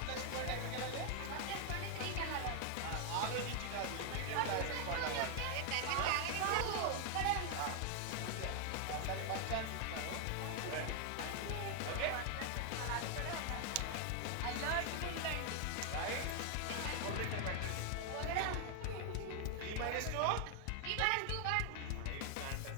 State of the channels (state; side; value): different; both; correlation 0.00